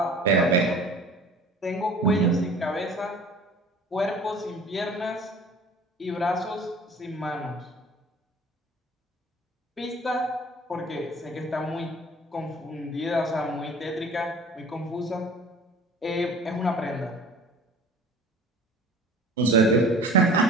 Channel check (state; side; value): normal; both; correlation 0.45